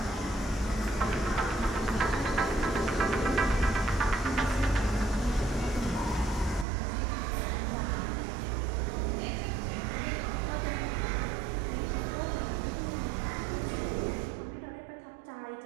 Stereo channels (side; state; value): left; drops out; at 6.7 s